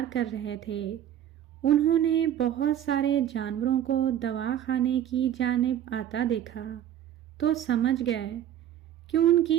کر رہے تھے۔ انہوں نے بہت سارے جانوروں کو دواخانے کی جانب آتا دیکھا تو سمجھ گئے کہ ان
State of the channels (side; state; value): left; quieter; 10.8 dB